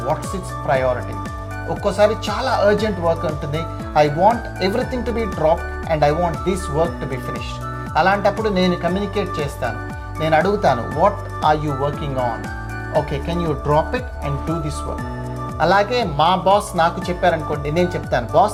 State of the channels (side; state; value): both; identical; correlation 1.00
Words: what's its priority. ఒక్కోసారి చాలా urgent work ఉంటుంది, I want everything to be drop and I want this work to be finished. అలాంటప్పుడు నేను communicate చేస్తాను, నేను అడుగుతాను, what are you working on? Okay, can you drop it and do this work. అలాగే మా boss నాకు చెప్పారనుకోండి, నేను చెప్తాను,